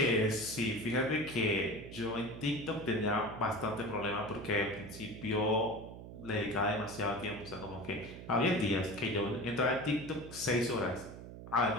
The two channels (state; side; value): noise; right; hum, 12 dB below the sound